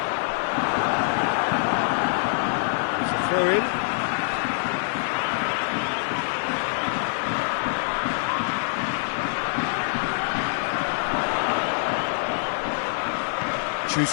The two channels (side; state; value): right; silent; digital silence